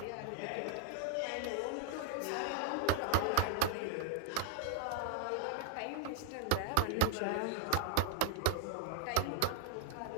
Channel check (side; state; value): both; different; correlation 0.00